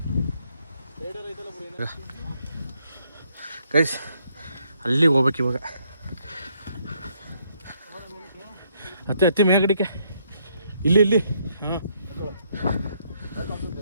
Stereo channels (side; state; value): both; inverted; correlation -0.72